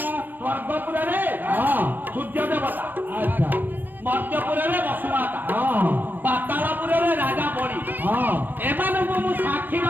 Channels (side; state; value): left; late; 0.088 ms